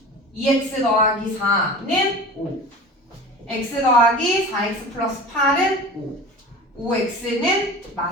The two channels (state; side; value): normal; both; correlation 0.36